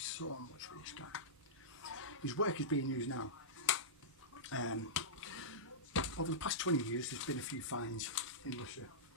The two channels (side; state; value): both; normal; correlation -0.15